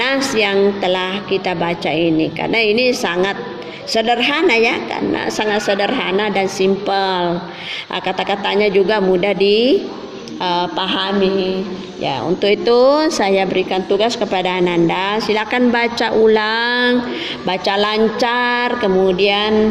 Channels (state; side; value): identical; both; correlation 1.00